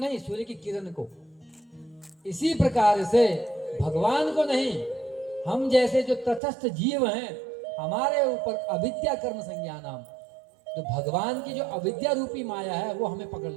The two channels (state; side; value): drops out; left; at 6.4 s